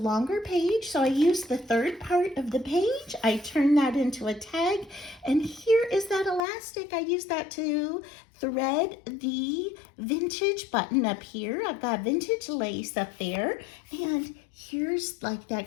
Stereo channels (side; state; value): right; drops out; at 6.5 s